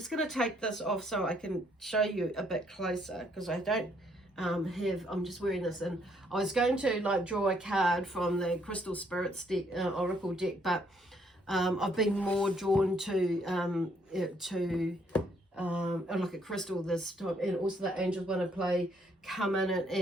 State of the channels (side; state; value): both; normal; correlation 0.69